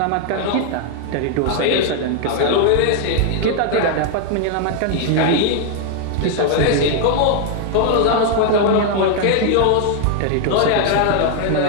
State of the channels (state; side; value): different; both; correlation 0.00